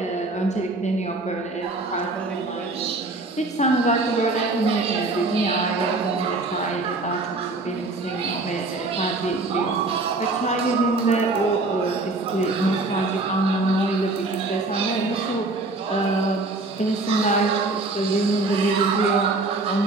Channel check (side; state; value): left; quieter; 3.2 dB